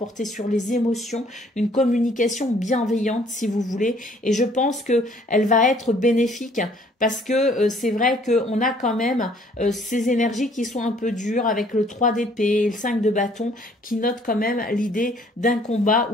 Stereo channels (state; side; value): normal; both; correlation 0.60